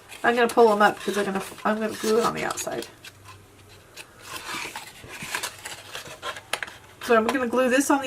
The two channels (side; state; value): both; identical; correlation 1.00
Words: I'm going to pull them up because I'm going to glue it on the outside. So I'm going to glue this on